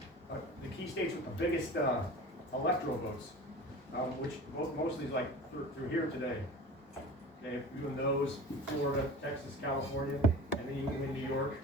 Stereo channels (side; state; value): both; normal; correlation 0.37